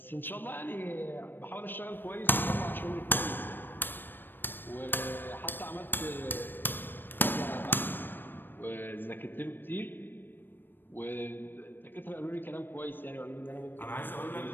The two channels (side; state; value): right; late; 0.095 ms